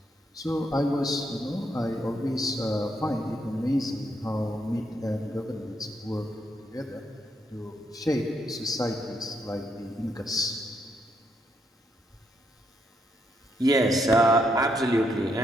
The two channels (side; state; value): both; normal; correlation 0.77